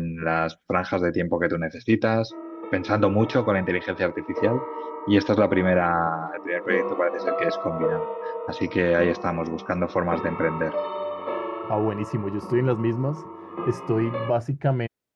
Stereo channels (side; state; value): both; identical; correlation 1.00